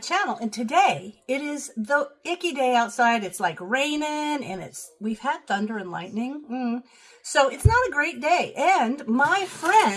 And today it is the icky day outside. It's like raining and we've had thunder and lightning. So it's not a great day. And my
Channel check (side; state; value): both; identical; correlation 1.00